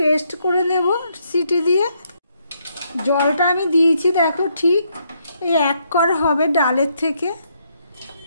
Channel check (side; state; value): both; inverted; correlation -0.74